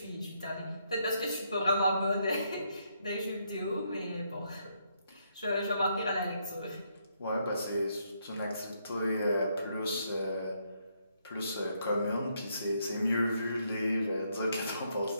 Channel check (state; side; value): inverted; both; correlation -0.75